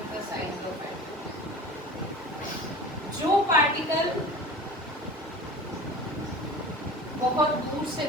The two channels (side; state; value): both; normal; correlation 0.37